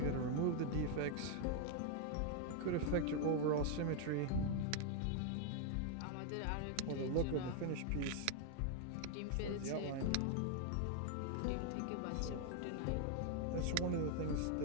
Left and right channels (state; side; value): different; both; correlation 0.00